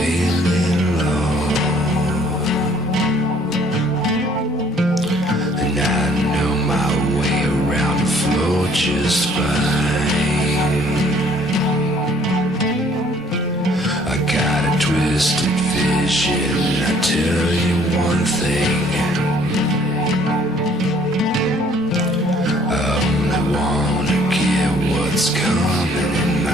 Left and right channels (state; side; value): normal; both; correlation 0.60